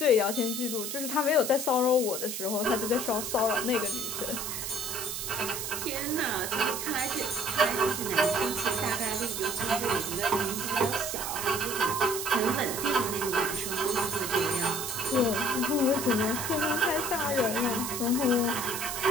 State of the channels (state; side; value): noise; right; hiss, 4 dB below the sound